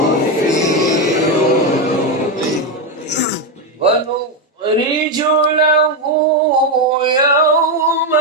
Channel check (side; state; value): both; normal; correlation 0.07